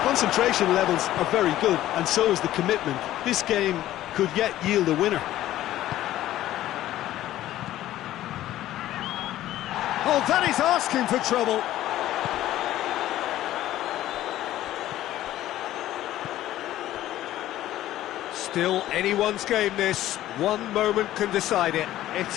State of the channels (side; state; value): right; quieter; 14.0 dB